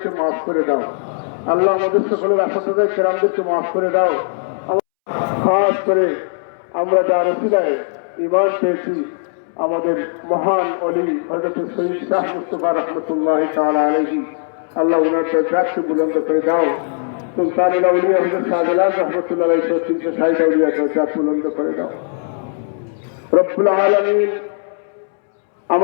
মাফ করে দাও আল্লাহ, আমাদের সকলের আসাদায় কেরামদেরকে মাফ করে দাও। খাস করে আমরা যার ওসিলায় ঈমান পেয়েছি আমাদের মহান ওলি হযরত সৈয়দ শাহ মুস্তাফা রাহমাতুল্লাহি তাআলা আলাইহি, আল্লাহ ওনার দরজাকে বুলন্দ করে দাও। সুলতানুল আউলিয়া হযরত শাহজালাল রাহমাতুল্লাহ আলাইহি তিনশো 60 আউলিয়া দরজা বুলন্দ করে দাও রব্বুল আলামিন।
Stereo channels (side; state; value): right; silent; 67 dB below the other